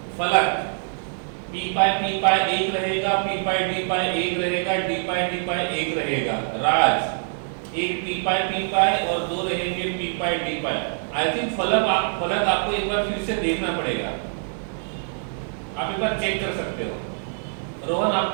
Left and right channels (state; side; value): silent; left; digital silence